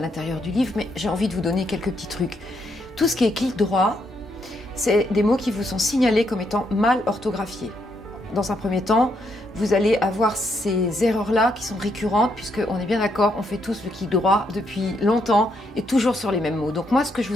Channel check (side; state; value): both; normal; correlation 0.76